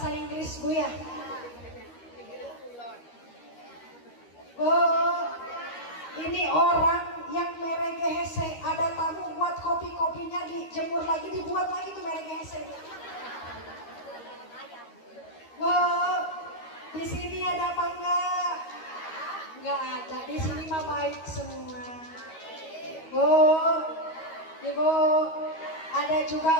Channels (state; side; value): late; right; 13 ms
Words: Inggris Bu ya. Oh, ini orang yang meregehese, ada tamu buat kopi-kopinya dijemur lagi, dibuat lagi tuh meregehese. Wow, di sini ada apa enggak? Enggak ada, di sini mah baik semua. Ibu, ada juga